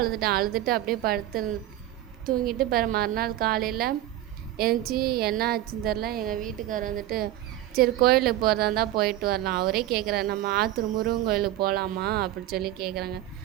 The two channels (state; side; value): quieter; left; 13.8 dB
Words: அப்படியே படுத்து தூங்கிட்டு மறுநாள் காலையில் எழுந்துச்சி என்ன ஆச்சுன்னு தெரில. எங்கள் வீட்டுக்காரர் சரி கோயிலுக்கு போகிறதா இருந்தால் போயிட்டு வரலாம். அவரே கேட்குறாரு, நம்ம ஆத்தூர் முருகன் கோயிலுக்கு போகலாமா அப்படின்னு சொல்லி கேட்குறாங்க.